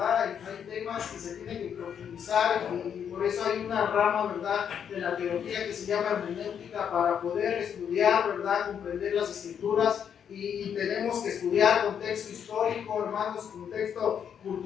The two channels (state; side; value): quieter; right; 8.1 dB